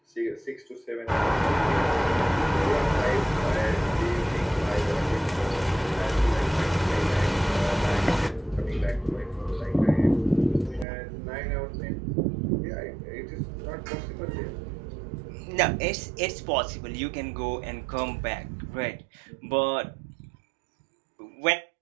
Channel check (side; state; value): left; drops out; at 10.9 s